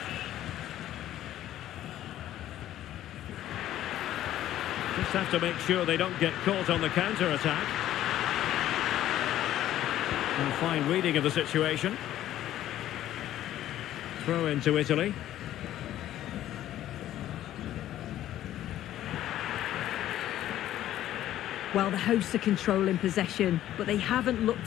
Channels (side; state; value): right; quieter; 12.8 dB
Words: Just have to make sure they don't get caught on the counter-attack. And fine reading of the situation. Throw into Italy. Well, the hosts are controlling possession, but they haven't